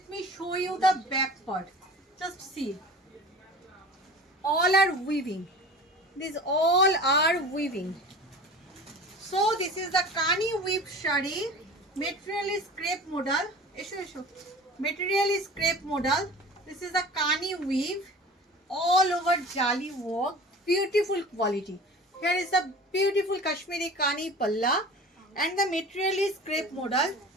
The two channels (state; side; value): normal; both; correlation 0.39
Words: me show you the back part, just see, all are weaving, these all are weaving. So this is the Kani weave shari, material is crepe modal, material is crepe modal. This is the Kani weave, all over jali work, beautiful quality. Here is the beautiful Kashmiri Kani palla and the material is crepe modal.